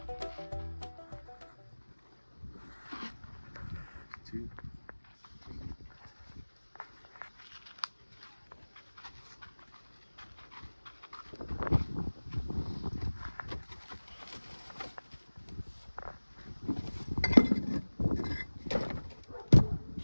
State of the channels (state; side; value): inverted; both; correlation -1.00